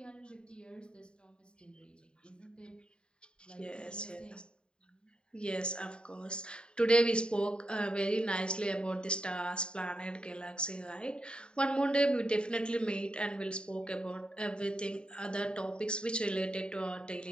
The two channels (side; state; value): right; late; 0.050 ms